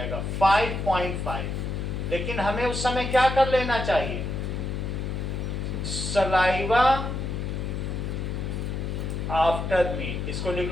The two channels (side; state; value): left; noise; hum, 3 dB below the sound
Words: 5.5। लेकिन हमें उस समय क्या कर लेना चाहिए? सलाइवा आफ्टर मील, इसको